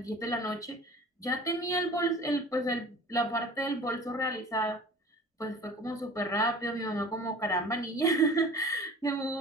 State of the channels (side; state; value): both; normal; correlation 0.43